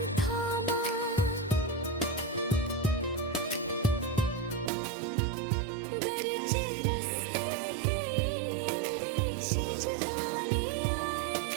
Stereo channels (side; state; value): left; drops out; at 4.7 s